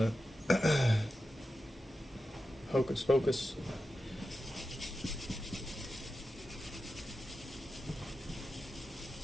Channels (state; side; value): normal; both; correlation 0.91